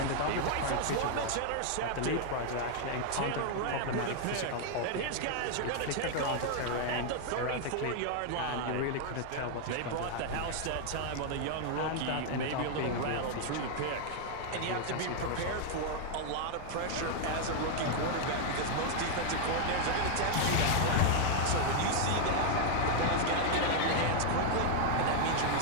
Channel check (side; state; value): both; different; correlation 0.00